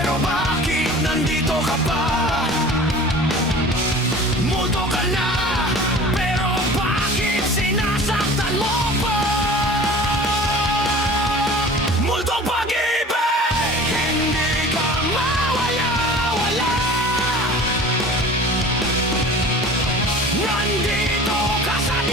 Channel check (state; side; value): normal; both; correlation 0.42